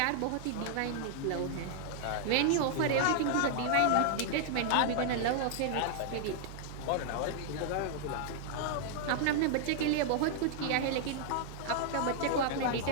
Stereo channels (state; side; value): different; both; correlation -0.01